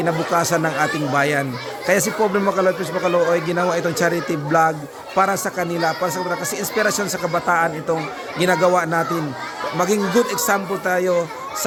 ng ating bayan. Kaya si Pobre Makalooy, Principal Makalooy, ginawa itong charity vlog para sa kanila, kasi inspirasyon sa kabataan itong ginagawa natin. Maging good example tayo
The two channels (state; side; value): identical; both; correlation 1.00